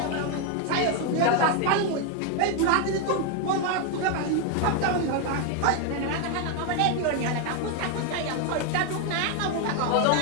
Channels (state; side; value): different; both; correlation 0.01